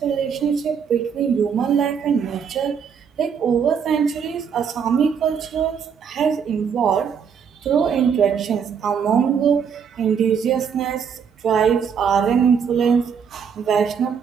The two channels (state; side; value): quieter; left; 7.0 dB